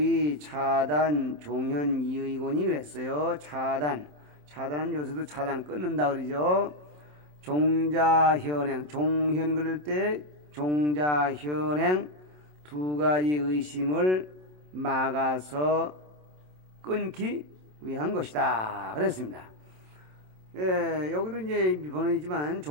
종현 이의곤이 그랬어요. 차단은 요새도 차단 끊는다 그러죠. 종자현행 종현 그럴 때 종자현행 두 가지 의심을 막아서 끊기 위한 것이다 그랬습니다. 예, 여기도 이제 번호이지만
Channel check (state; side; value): late; left; 27 ms